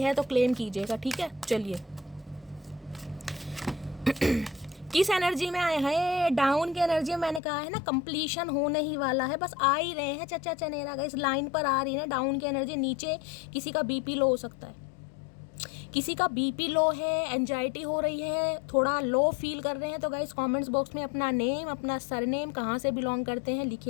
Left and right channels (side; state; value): right; drops out; at 7.4 s